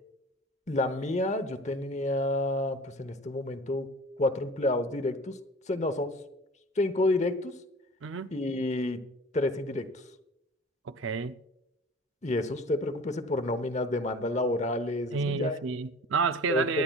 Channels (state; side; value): normal; both; correlation 0.43